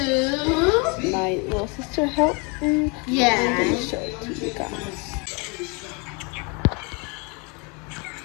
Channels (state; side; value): quieter; right; 31.5 dB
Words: My little sister helped me. Yeah. I'm gonna show it to you guys.